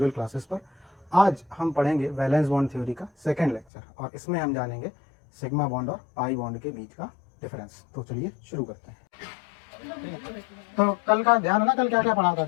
क्लासेस पर। आज हम पढ़ेंगे वैलेंस बॉन्ड थ्योरी का सेकंड लेक्चर और इसमें हम जानेंगे सिग्मा बॉन्ड और पाई बॉन्ड के बीच का डिफरेंस। तो चलिए शुरू करते हैं। तो कल का ध्यान है ना, कल क्या क्या पढ़ा था,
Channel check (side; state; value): right; drops out; at 3.7 s